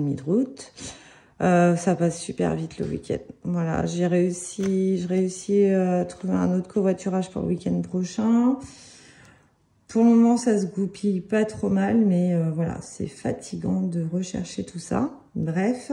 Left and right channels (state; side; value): identical; both; correlation 1.00